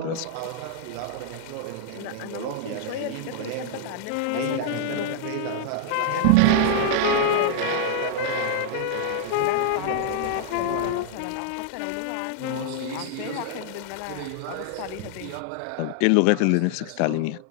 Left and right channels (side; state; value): both; different; correlation -0.01